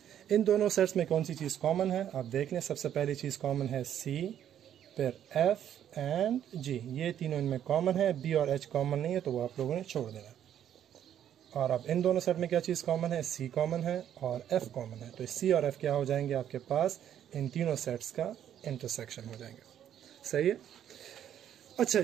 इन दोनों सेट्स में कौन सी चीज़ कॉमन है, आप देख लें। सबसे पहली चीज़ कॉमन है C, फिर F एंड G, ये तीनों इनमें कॉमन है। B और H कॉमन नहीं है तो वो आप लोगों ने छोड़ देना। और अब इन दोनों सेट में क्या चीज़ कॉमन है, C कॉमन है और F कॉमन है। तो C और F क्या हो जाएंगे आपके पास, इन तीनों सेट्स का इंटरसेक्शन हो जाएंगे। सही है, अच्छा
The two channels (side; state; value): left; quieter; 10.2 dB